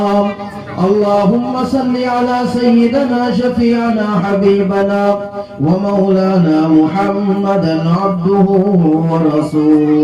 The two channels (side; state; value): both; identical; correlation 1.00